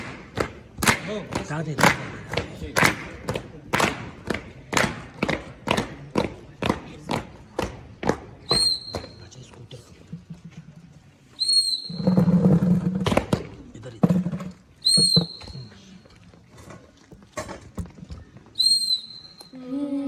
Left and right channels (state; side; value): identical; both; correlation 1.00